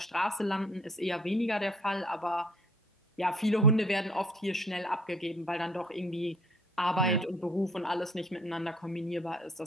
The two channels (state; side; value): normal; both; correlation 0.57